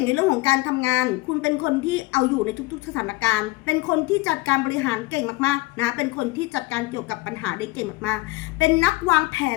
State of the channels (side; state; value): right; quieter; 20.4 dB